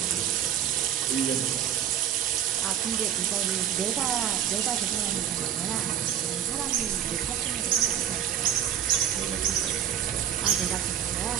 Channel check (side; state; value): left; quieter; 9.8 dB